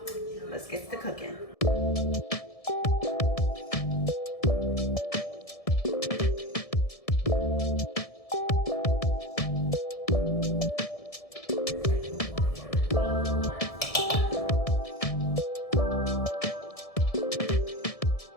Let's get to cooking.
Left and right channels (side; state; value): right; late; 1.7 ms